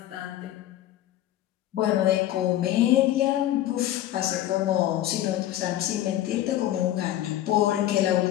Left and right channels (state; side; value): quieter; right; 13.3 dB